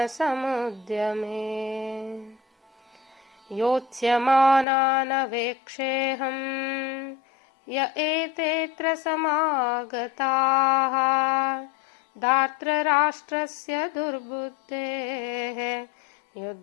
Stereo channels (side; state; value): right; drops out; at 4.7 s